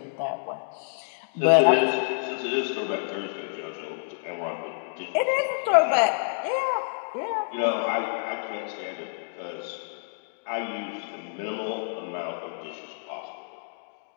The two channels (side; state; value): right; silent; digital silence